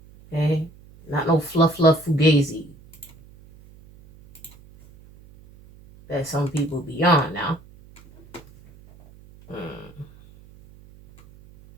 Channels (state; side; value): noise; right; hum, 24 dB below the sound